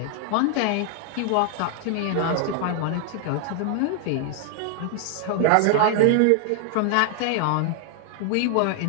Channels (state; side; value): different; both; correlation 0.00